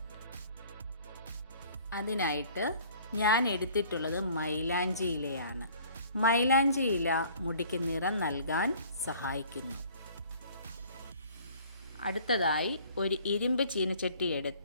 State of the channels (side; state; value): both; inverted; correlation -0.53